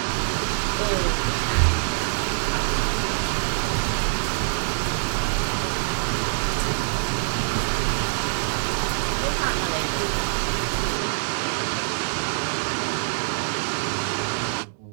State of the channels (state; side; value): silent; left; digital silence